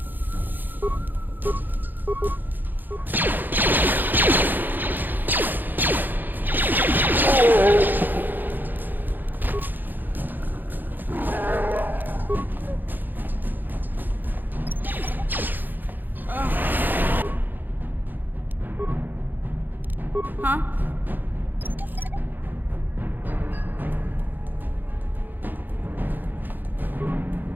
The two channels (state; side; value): late; left; 0.088 ms